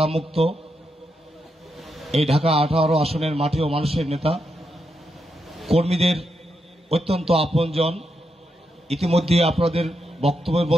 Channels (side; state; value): both; normal; correlation 0.83